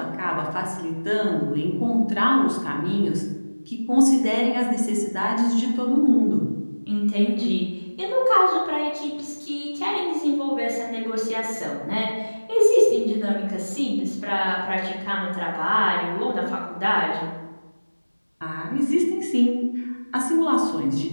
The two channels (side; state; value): both; inverted; correlation -1.00